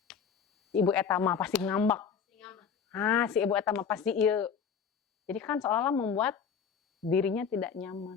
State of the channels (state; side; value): quieter; right; 6.7 dB